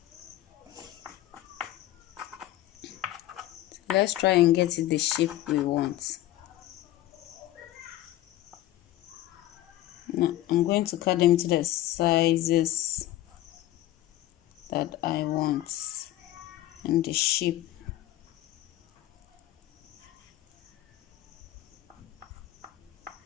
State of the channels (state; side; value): quieter; right; 14.7 dB